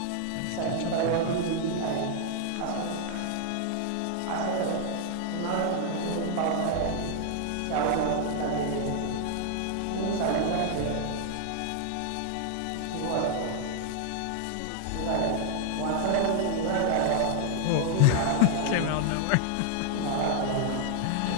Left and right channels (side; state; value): both; different; correlation 0.00